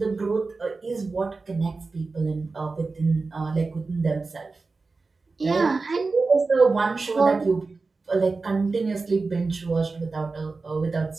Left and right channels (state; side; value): quieter; left; 3.9 dB